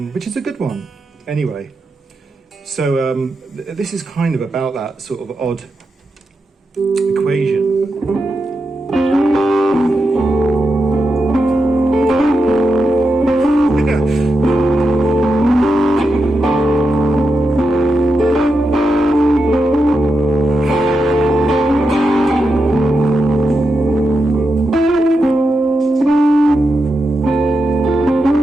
which is a good one. Anyway, so this is kind of about that sort of odd equation.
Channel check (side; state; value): both; normal; correlation 0.87